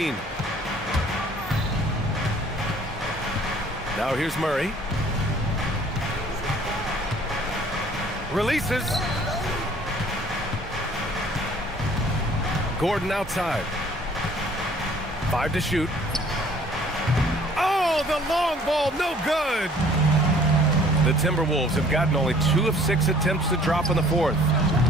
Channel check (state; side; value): normal; both; correlation 0.55